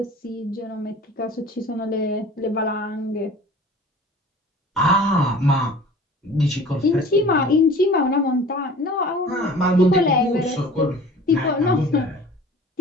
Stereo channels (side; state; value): both; normal; correlation 0.44